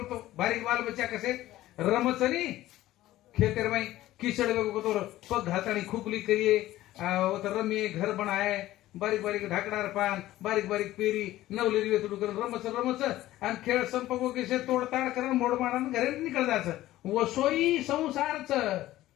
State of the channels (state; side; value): quieter; right; 15.3 dB